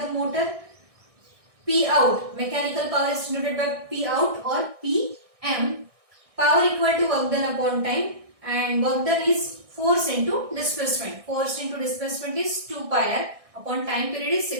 motor, P out. Mechanical power is denoted by P out or Pm. Power equal to work done upon time, and work done is force into displacement. Force into displacement is 2 pi r upon time period is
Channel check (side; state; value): left; late; 1.6 ms